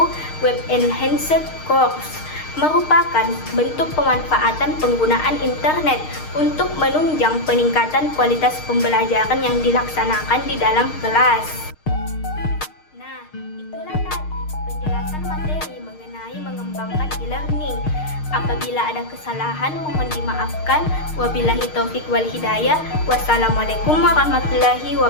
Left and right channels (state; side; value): late; right; 6.5 ms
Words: web-enhanced course merupakan bentuk pemanfaatan penggunaan internet untuk menunjang peningkatan kualitas pembelajaran yang dilaksanakan di dalam kelas. Nah, itulah tadi penjelasan materi mengenai mengembangkan e-learning. Apabila ada kesalahan mohon dimaafkan. Wabillahi taufik wal hidayah. Wassalamualaikum warahmatullahi